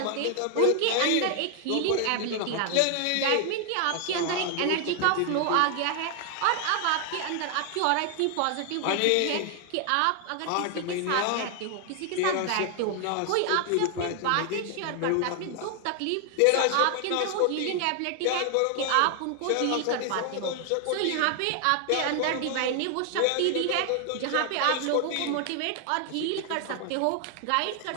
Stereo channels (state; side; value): different; both; correlation 0.00